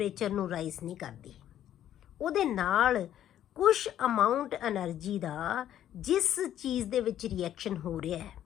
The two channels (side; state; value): right; quieter; 11.3 dB